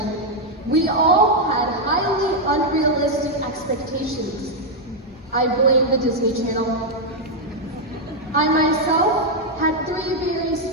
we all had highly unrealistic expectations. I blame the Disney Channel. I myself had 3 very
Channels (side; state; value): both; normal; correlation -0.01